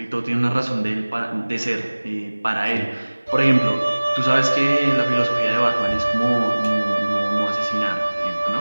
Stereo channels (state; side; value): inverted; both; correlation -1.00